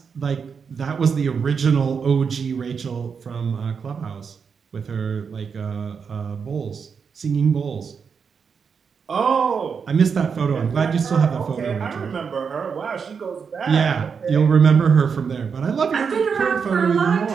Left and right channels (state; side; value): quieter; left; 6.1 dB